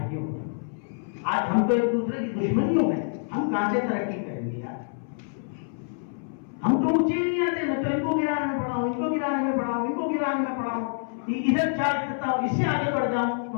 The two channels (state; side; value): silent; right; 60 dB below the other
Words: میں۔ آج ہم تو ایک دوسرے کی دشمنیوں میں، ہم کہاں سے ترقی کریں گے یار؟ ہم تو اونچے نہیں آتے، میں تو ان کو گرانے میں پڑا ہوں، ان کو گرانے میں پڑا ہوں، ان کو گرانے میں پڑا ہوں، ادھر چارج کرتا ہوں، اس سے آگے بڑھ جاؤں